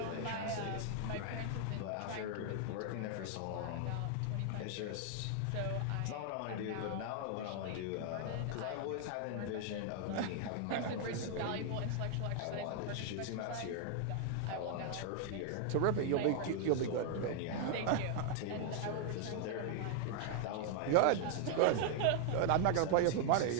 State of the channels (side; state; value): both; different; correlation 0.00